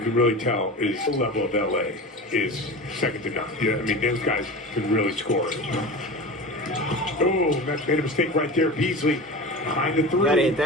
really tell is the level of LA is second to none. Yeah, I mean, those guys can really score. Oh, that's made a mistake right there. Beasley behind the three. You gotta hit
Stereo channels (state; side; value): normal; both; correlation 0.31